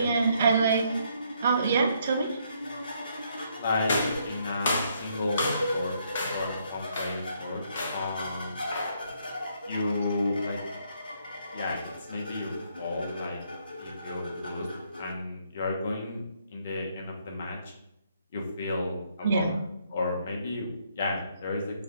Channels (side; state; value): both; inverted; correlation -0.71